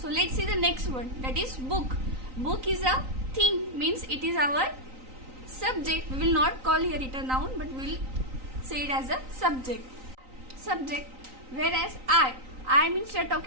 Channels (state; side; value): late; left; 3.9 ms